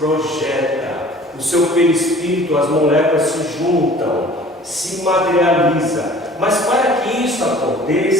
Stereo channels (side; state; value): both; normal; correlation 0.48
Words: O seu perispírito, as moléculas se juntam, se materializa. Mas para que isso